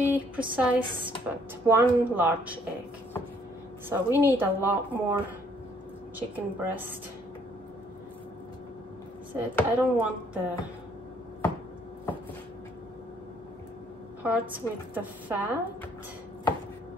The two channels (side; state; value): both; normal; correlation 0.65